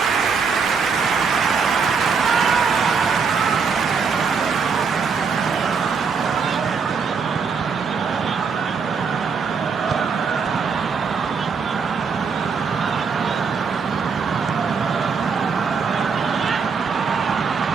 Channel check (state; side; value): quieter; left; 5.6 dB